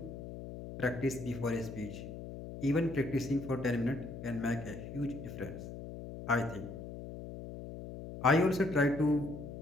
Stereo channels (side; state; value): left; noise; hum, 10 dB below the sound